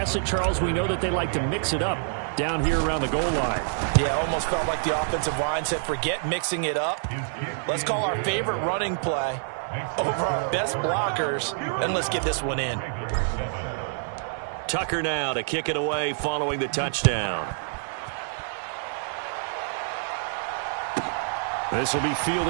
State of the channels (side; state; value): left; silent; digital silence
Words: it, Charles. We know that they like to mix it up down here around the goal line. Yeah, almost felt like the offensive line said, forget mixing it up. Let's call our favorite running play over our best blockers, and let's get this one in. Tucker now to kick it away following the touchdown. This will be